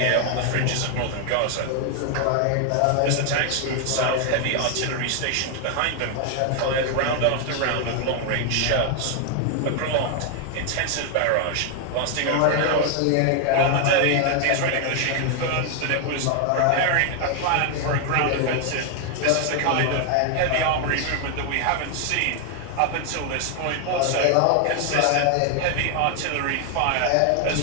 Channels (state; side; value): different; both; correlation 0.00